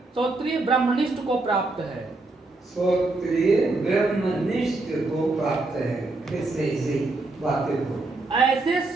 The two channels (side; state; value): left; quieter; 3.2 dB